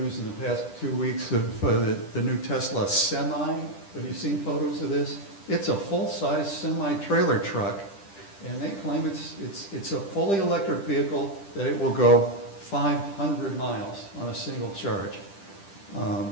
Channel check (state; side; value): late; right; 10 ms